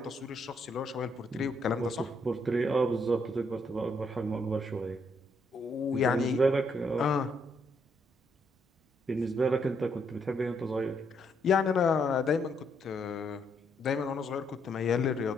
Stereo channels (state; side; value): normal; both; correlation 0.74